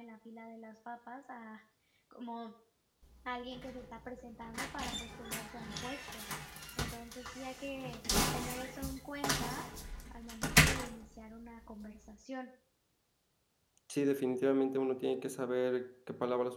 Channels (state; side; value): identical; both; correlation 1.00